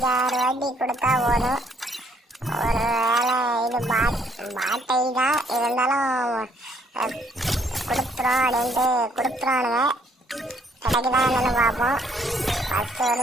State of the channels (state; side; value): normal; both; correlation 0.67